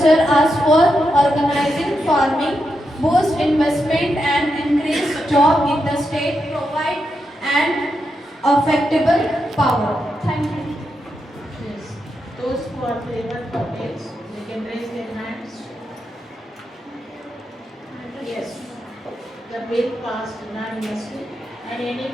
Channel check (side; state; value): both; normal; correlation 0.85